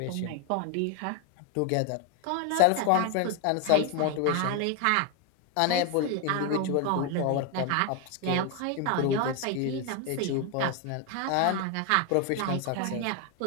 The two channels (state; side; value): different; both; correlation 0.01